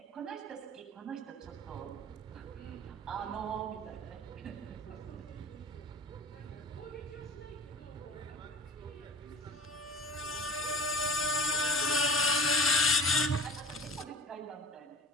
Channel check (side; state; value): both; normal; correlation 0.39